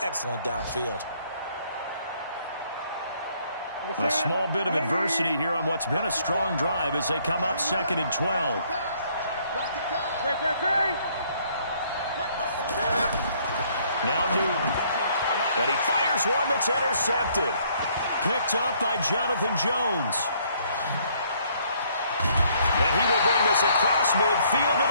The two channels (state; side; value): inverted; both; correlation -0.65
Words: downfield. A small bit of adversity here on what's been a strong drive as they come up 2nd and 12. Now Newton. And he fires one that's intercepted. Picked up by Jonathan Jones. And he will bring this across midfield to